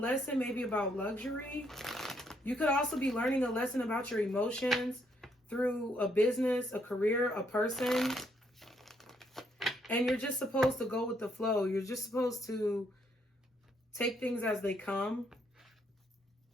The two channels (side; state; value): both; normal; correlation 0.73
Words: maybe about luxury. You could also be learning a lesson about your emotions through a business, a career, a person. And you're just supposed to go with the flow. You're just supposed to take things as they come.